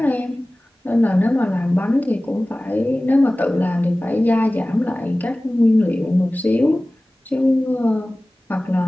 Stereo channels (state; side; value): normal; both; correlation 0.98